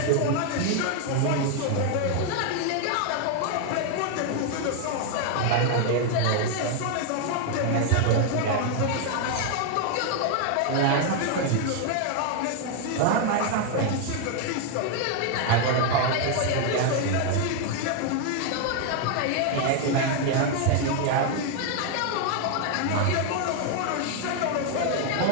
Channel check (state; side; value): different; both; correlation 0.00